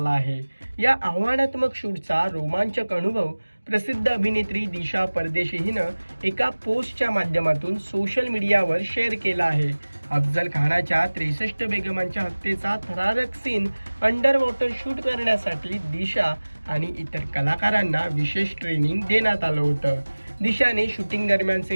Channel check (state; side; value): inverted; both; correlation -1.00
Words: आहे. या आव्हानात्मक शूटचा रोमांचक अनुभव प्रसिद्ध अभिनेत्री दिशा परदेशी हिनं एका पोस्टच्या माध्यमातून सोशल मीडियावर शेअर केला आहे. अफजल खानाच्या 63 बेगमांच्या हत्येचा थरारक सीन अंडर वॉटर शूट करण्यासाठी दिशा आणि इतर कलाकारांना विशेष ट्रेनिंग देण्यात आलं होतं. दिशाने शूटिंग